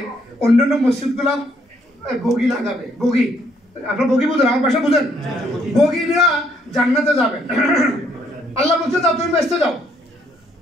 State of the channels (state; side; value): normal; both; correlation 0.69